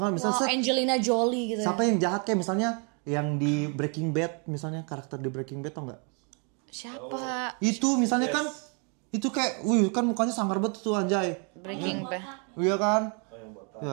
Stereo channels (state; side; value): quieter; left; 37.2 dB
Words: misalnya Wow, set, Angelina Jolie gitu. siapa yang jahat kayak misalnya yang di Breaking Bad, misalnya karakter di Breaking Bad tau nggak? Siapa? Itu misalnya kan itu kayak, wih kan mukanya sangar banget tuh anjay. Breaking Bad. Iya kan?